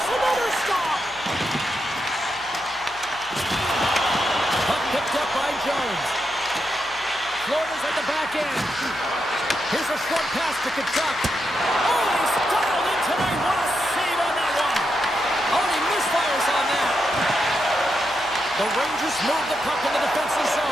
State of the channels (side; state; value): left; noise; hum, 24 dB below the sound